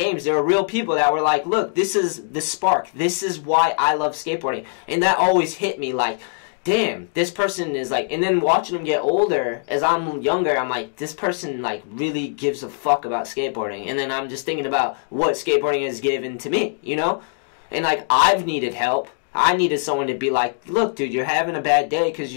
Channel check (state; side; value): silent; right; 64 dB below the other